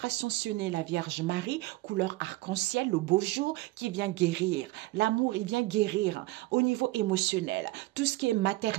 Ascensionné, la Vierge Marie, couleur arc-en-ciel, le beau jour, qui vient guérir. L'amour, il vient guérir au niveau émotionnel. Tout ce qui est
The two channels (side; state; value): left; quieter; 19.5 dB